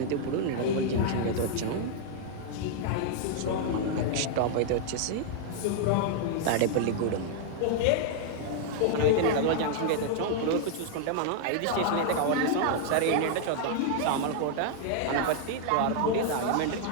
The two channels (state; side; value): different; both; correlation -0.01